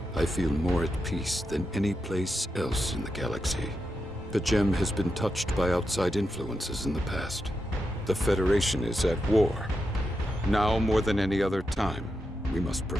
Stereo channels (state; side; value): normal; both; correlation 0.87